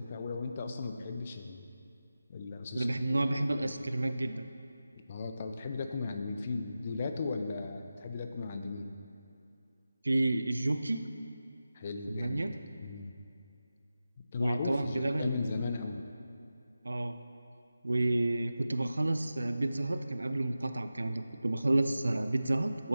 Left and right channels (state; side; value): inverted; both; correlation -0.93